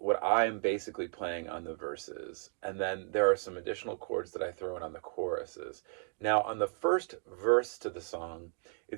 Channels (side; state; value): left; silent; 55 dB below the other